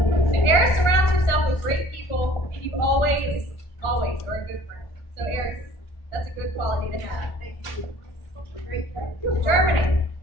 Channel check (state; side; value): late; right; 1.4 ms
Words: Eris surrounds herself with great people, and you always are a good friend. So Eris, that's a good quality to have. Thank you. Germany.